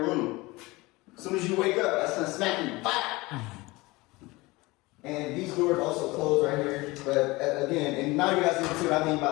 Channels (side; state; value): right; quieter; 22.1 dB